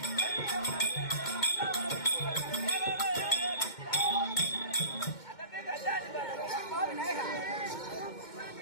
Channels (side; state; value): right; late; 2.1 ms